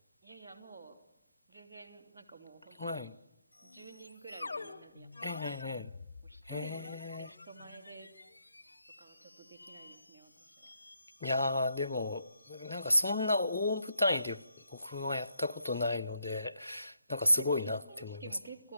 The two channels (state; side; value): inverted; both; correlation -0.77